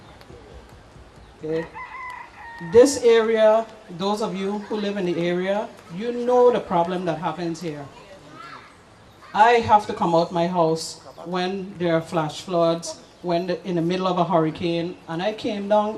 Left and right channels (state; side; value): identical; both; correlation 1.00